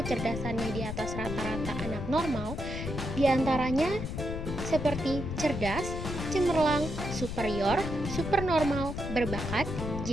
di atas rata-rata anak normal, diantaranya seperti cerdas, cemerlang, superior, supernormal, berbakat,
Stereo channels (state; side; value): noise; left; rumble, 5 dB below the sound